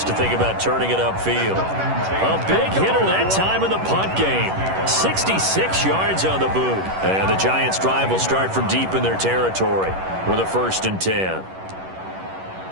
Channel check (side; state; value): left; late; 11 ms